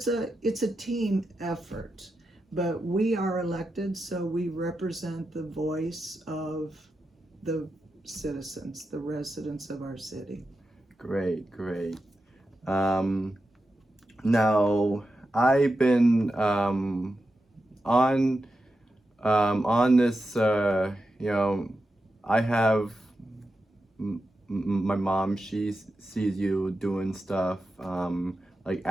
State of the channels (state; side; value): normal; both; correlation 0.89